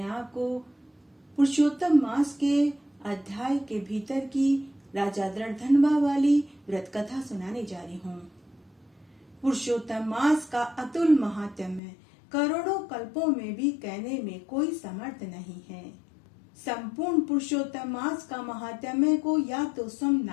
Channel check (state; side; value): drops out; right; at 11.8 s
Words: आपको पुरुषोत्तम मास के अध्याय के भीतर की राजा दृढ़धनवा वाली व्रत कथा सुनाने जा रही हूँ। पुरुषोत्तम मास का अतुल महात्म्य करोड़ों कल्पों में भी कहने में कोई समर्थ नहीं है। संपूर्ण पुरुषोत्तम मास का महात्म्य को या तो स्वयं